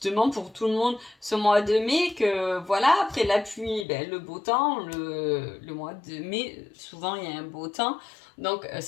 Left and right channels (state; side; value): drops out; right; at 3.9 s